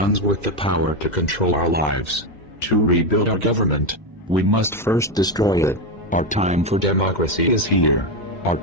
with the power to control our lives. To rebuild our government, we must first destroy it. Our time for democracy is here. Our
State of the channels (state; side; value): normal; both; correlation 0.10